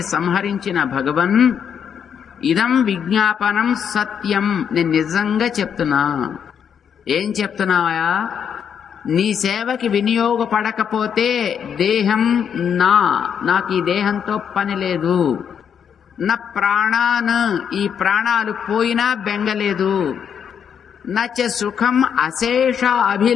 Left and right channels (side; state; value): right; quieter; 7.8 dB